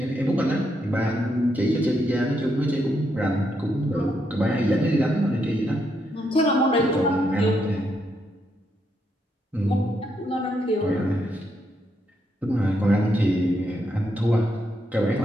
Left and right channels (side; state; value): both; normal; correlation 0.79